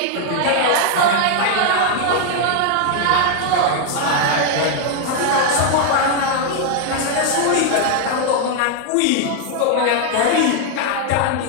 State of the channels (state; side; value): different; both; correlation 0.00